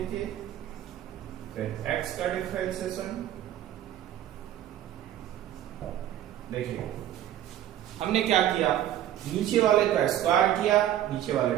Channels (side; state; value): left; quieter; 11.8 dB